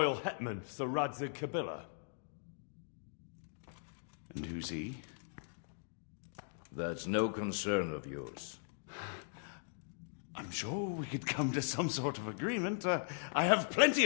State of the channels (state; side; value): silent; right; digital silence